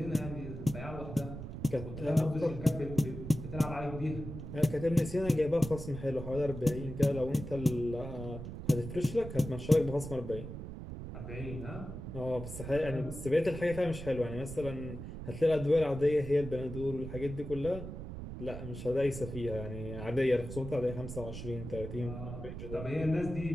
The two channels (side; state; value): right; noise; rumble, 9 dB below the sound